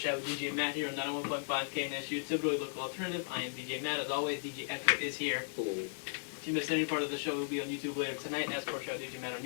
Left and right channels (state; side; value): silent; right; digital silence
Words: with DJ Matt here on 91.5 KNSU, typically local alternative. I am DJ Matt. As always, DJ Echo is here. Hello. If you missed any part of the show, we'll be on YouTube later tonight at Sportschat with DJ Matt on